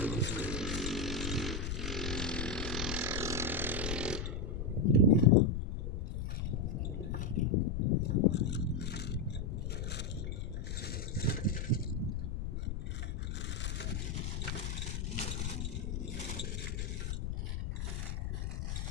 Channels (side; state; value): left; noise; rumble, 2 dB below the sound